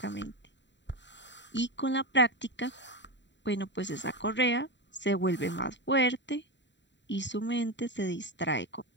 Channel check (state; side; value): late; right; 0.52 ms